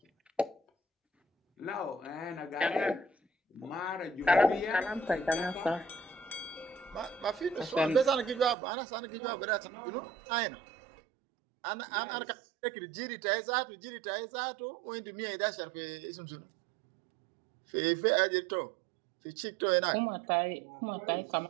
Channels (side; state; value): left; drops out; at 8.6 s